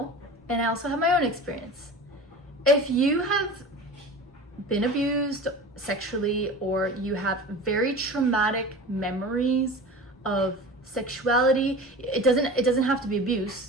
and I also have my own experience. If you have been abused sexually, or you have very traumatic memories of sexuality, it doesn't have to be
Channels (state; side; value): normal; both; correlation 0.35